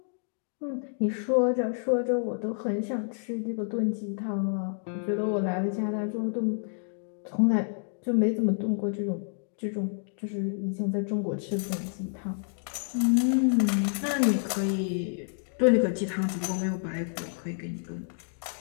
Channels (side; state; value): right; silent; digital silence